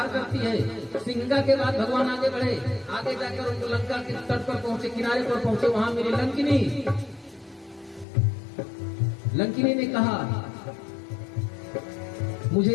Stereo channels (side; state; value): right; drops out; at 8.1 s